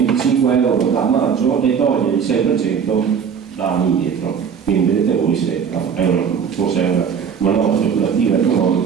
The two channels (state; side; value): quieter; left; 7.0 dB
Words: euro da maggio e toglie il 6% da anni indietro. Quindi vedete voi se forse è una manovra speculativa